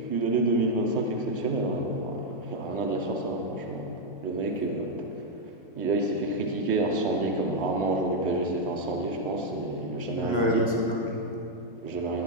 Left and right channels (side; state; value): right; late; 1.6 ms